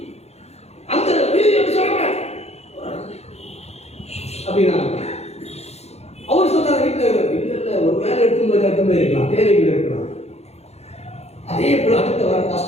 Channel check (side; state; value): right; late; 0.31 ms